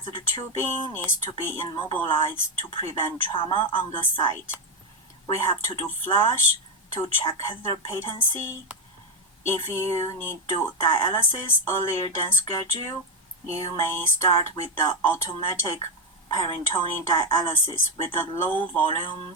tubing needs to be immobilized to prevent trauma on the site. We have to do flush to check catheter patency. If you need to do dialysis earlier than scheduled, you may start with the automatic peritoneal dialysis with the low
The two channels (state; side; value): normal; both; correlation 0.08